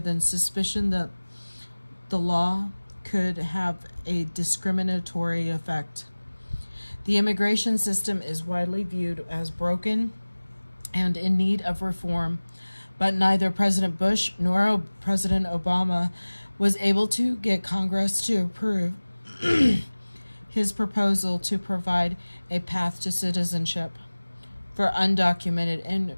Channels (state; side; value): inverted; both; correlation -1.00